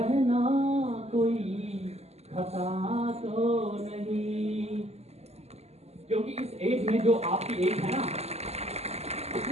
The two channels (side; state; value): left; late; 0.31 ms